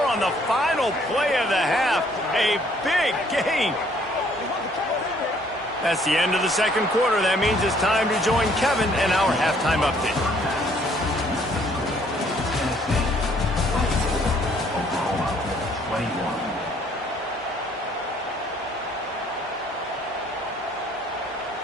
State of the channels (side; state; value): both; normal; correlation 0.63